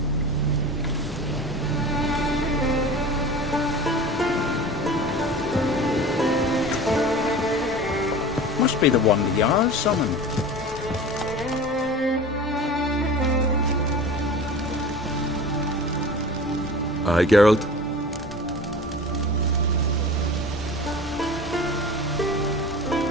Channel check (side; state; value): both; normal; correlation 0.36